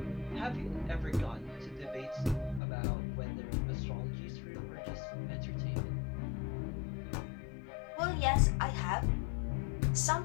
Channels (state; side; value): drops out; right; at 2.6 s